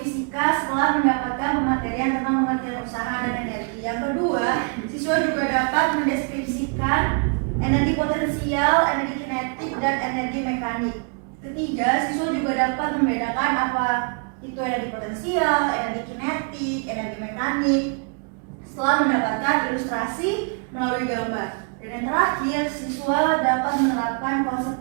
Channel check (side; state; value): left; quieter; 38.9 dB